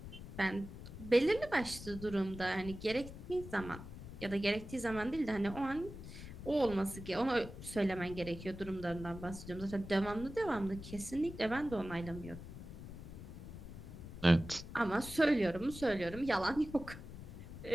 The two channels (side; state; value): left; noise; rumble, 12 dB below the sound